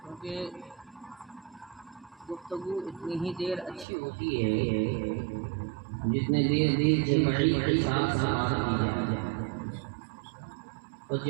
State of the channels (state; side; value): drops out; left; at 3.9 s